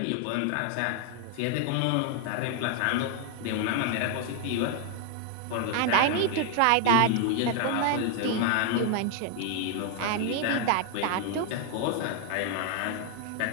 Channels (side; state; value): both; different; correlation 0.00